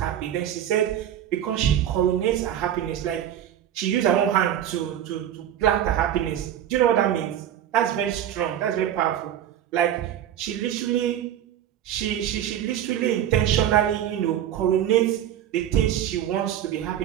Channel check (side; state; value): left; quieter; 10.7 dB